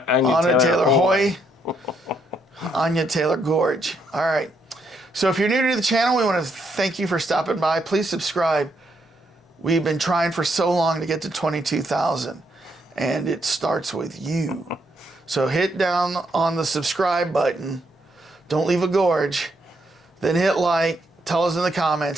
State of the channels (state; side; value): normal; both; correlation 0.75